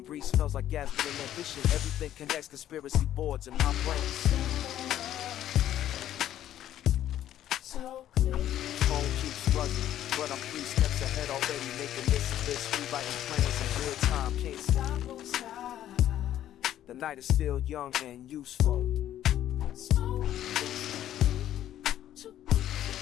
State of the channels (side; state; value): right; quieter; 11.9 dB